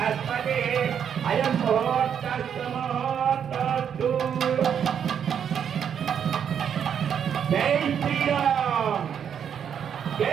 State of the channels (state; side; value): quieter; left; 8.2 dB